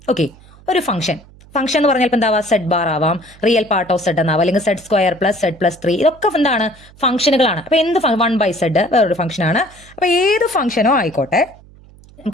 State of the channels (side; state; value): right; noise; hum, 24 dB below the sound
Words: ഓക്കെ, ഒരു ഫംഗ്ഷൻ എന്ന് പറഞ്ഞാൽ ഇപ്പം എന്താവാം, സെഡ് ബാർ ആവാം, റിയൽ പാർട്ട് ഓഫ് സെഡ് എന്നാവാം, അല്ലെങ്കിൽ z square plus z plus 3, ഇതൊക്കെ എന്താണ് ഫംഗ്ഷനുകളാണ്. അപ്പോൾ എന്ത് 1/z വേറൊരു ഫംഗ്ഷനാണ്. അപ്പോൾ ഏത് ഫംഗ്ഷനോ ആയിക്കോട്ടെ,